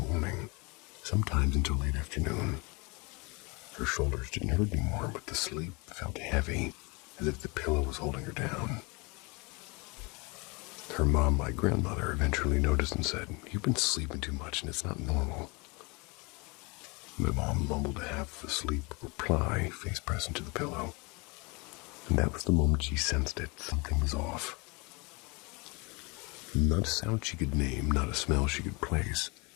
sometimes until late afternoon. Her shoulders didn't hurt anymore, but the sleep felt heavy, as if the pillow was holding her down. Her mom, my grandmother, eventually noticed and said, "You've been sleeping too much and it's not normal." My mom mumbled a half-asleep reply, face pressed into the pillow. And that was the moment she sensed it. Something was off. Not a sound she could name, not a smell she could place.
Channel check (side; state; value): right; quieter; 28.3 dB